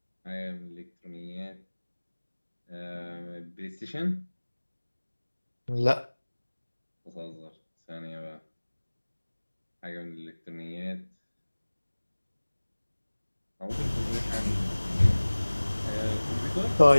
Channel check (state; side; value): inverted; both; correlation -1.00